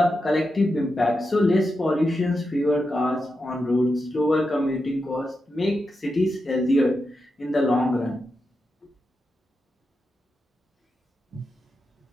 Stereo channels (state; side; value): normal; both; correlation 0.88